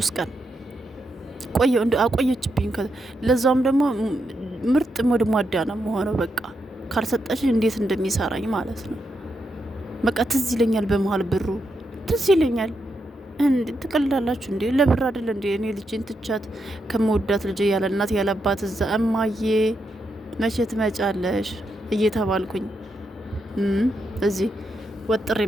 ቀን ቆየው እንደው አቆየችብኝ። ለዛውም ደግሞ ምርጥ ሞድሟዳ ነው መሆነው። በቃ ካልሰጠሽ እንዴት እንደሚሰራኝ ማለት ነው። በቃ ትዝ ይለኛል፣ በመሀል ብሩ ትዝ ይለኛል። እንዴ ትቀልዳላችሁ እንዴ? ለብር አይደል እንዴ? እኔ ልጅን ትቻት ከመወዳት ልጅ ያለ እናት ያለ አባት እዛ እማዬ መቼ ትመጫለሽ እየተባልኩኝ እዚህ ወጥር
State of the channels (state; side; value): normal; both; correlation 0.83